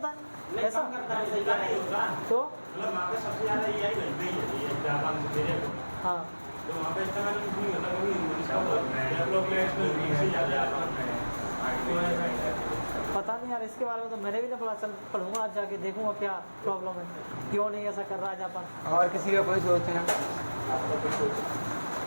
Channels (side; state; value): both; inverted; correlation -1.00